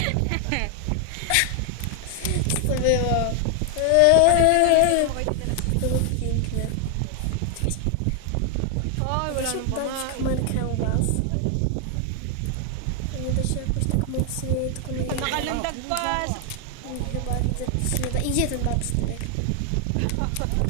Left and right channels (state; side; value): different; both; correlation 0.00